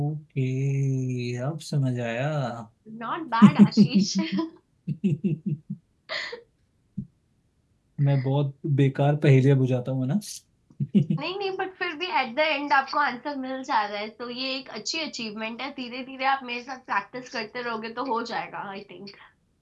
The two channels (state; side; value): identical; both; correlation 1.00